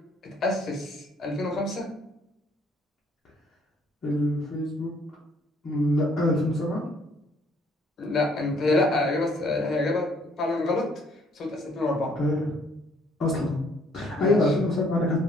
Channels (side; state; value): both; normal; correlation 0.63